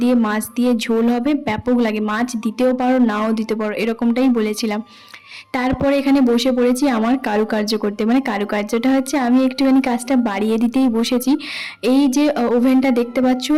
দিয়ে মাছ দিয়ে ঝোল হবে, ব্যাপক লাগে। মাছ দিতেও পারো নাও দিতে পারো, এরকমটাই বলেছিলাম। তারপরে এখানে বসে পড়েছি আমার কারুকার্য করতে। মানে কারুকার্যটা হচ্ছে আমি একটুখানি কাজটা বাড়িয়ে দিতেই বসেছি। এই যে ওভেনটা দেখতে পাচ্ছ,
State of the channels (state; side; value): identical; both; correlation 1.00